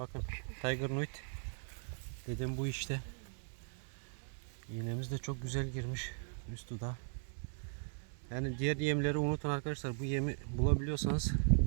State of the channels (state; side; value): silent; left; 52 dB below the other